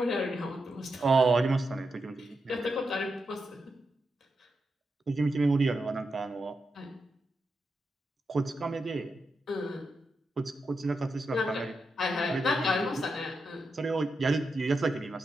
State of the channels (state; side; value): normal; both; correlation 0.86